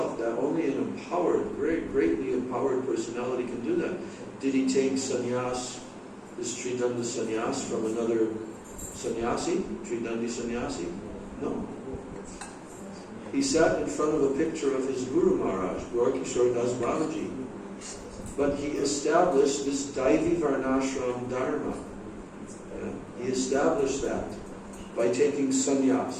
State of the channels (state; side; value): identical; both; correlation 1.00